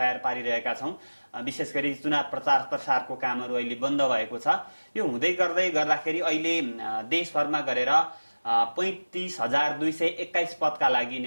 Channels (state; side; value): inverted; both; correlation -1.00